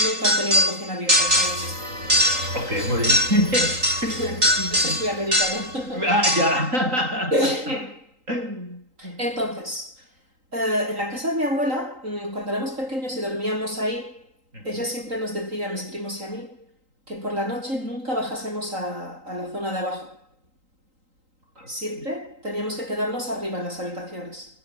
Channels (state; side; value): late; left; 3.8 ms